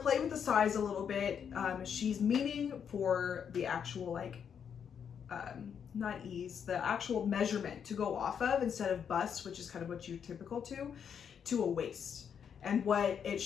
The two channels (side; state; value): right; quieter; 7.6 dB